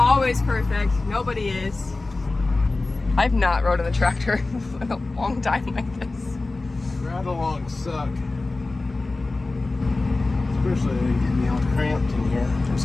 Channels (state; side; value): quieter; right; 3.3 dB